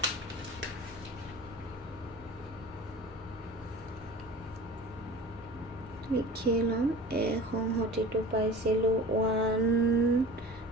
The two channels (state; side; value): normal; both; correlation 0.39